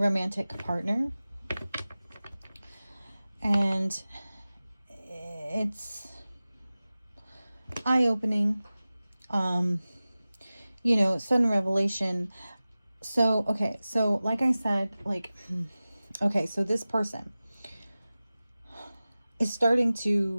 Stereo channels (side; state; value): both; inverted; correlation -0.97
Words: partner. And it's eye-opening, you know, sudden revelation. So, okay, so like I said, like, okay, so this person is starting